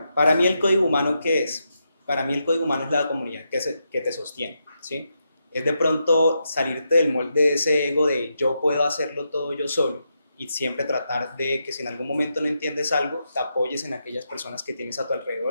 para mí el código humano, ¿qué es? Para mí el código humano es la comunidad que te sostiene, ¿sí? Es de pronto salirte del molde de ese ego de yo puedo hacerlo todo yo solo y siempre tratar de que si en algún momento no entiendes algo, te apoyes en aquellas personas que tienes a tu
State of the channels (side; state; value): both; inverted; correlation -0.84